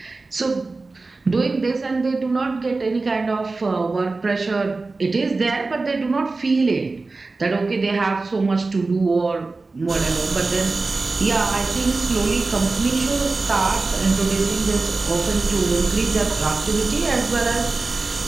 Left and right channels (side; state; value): left; quieter; 3.6 dB